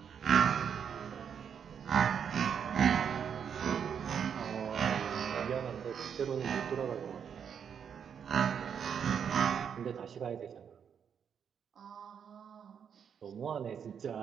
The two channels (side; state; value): left; quieter; 7.6 dB